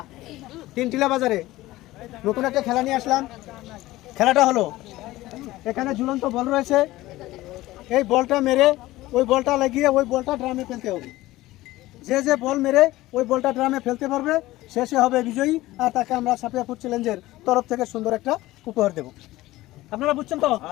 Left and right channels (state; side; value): quieter; right; 17.4 dB